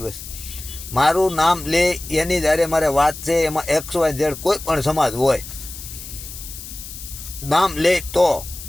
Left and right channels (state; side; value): noise; left; hiss, 12 dB below the sound